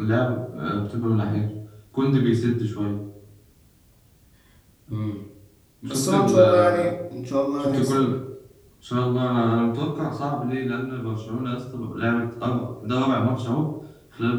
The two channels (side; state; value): both; identical; correlation 1.00